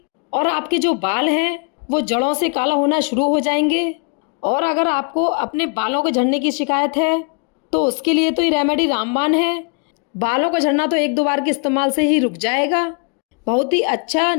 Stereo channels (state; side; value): quieter; right; 38.5 dB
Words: और आपके जो बाल हैं वो जड़ों से काला होना शुरू हो जाएंगे। और अगर आपको अपने बालों के झड़ने की शिकायत है तो उसके लिए तो ये रेमेडी रामबाण है। बालों का झड़ना तो 1-2 बार के इस्तेमाल से ही रुक जाएगा। बहुत ही अच्छा